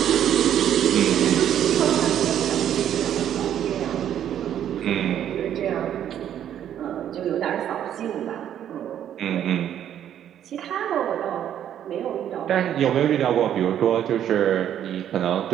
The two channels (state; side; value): quieter; left; 10.3 dB